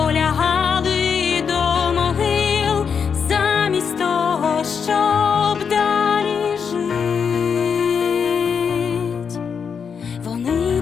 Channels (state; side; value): quieter; right; 6.5 dB